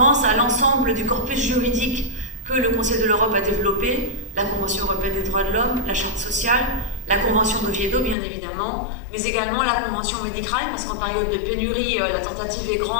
à l'ensemble du corpus juridique que le Conseil de l'Europe a développé, la Convention européenne des droits de l'homme, la Charte sociale, la Convention d'Oviedo bien évidemment, mais également la Convention Medicrime, parce qu'en période de pénurie, la tentative est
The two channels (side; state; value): right; drops out; at 8.2 s